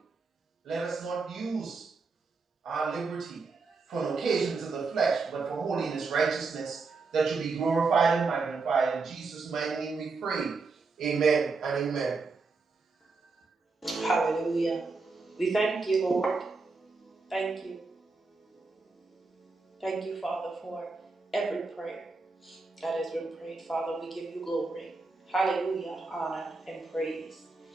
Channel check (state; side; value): quieter; left; 4.1 dB